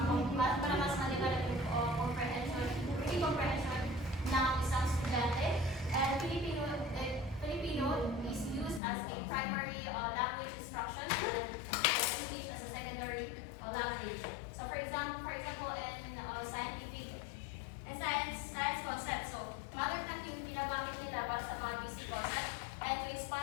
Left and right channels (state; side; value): drops out; right; at 8.8 s